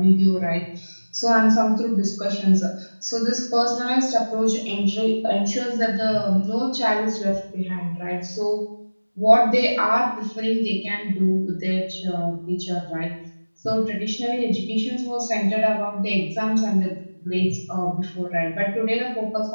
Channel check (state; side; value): inverted; both; correlation -1.00